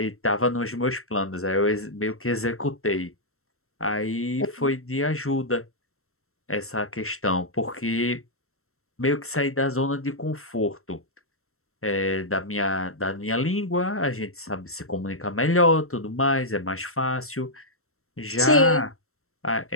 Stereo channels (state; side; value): late; right; 0.63 ms